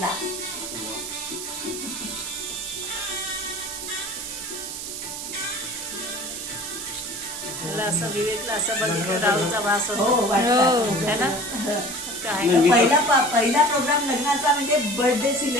मला असं विवेकला असं बघितलं राहूचा वास होतो है ना. पहिला प्रोग्राम लग्नाचा म्हणजे बर्थडे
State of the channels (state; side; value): noise; right; hiss, 7 dB below the sound